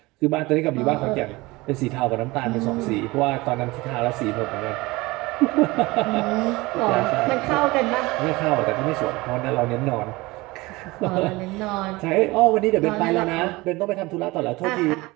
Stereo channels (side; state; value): left; quieter; 21.9 dB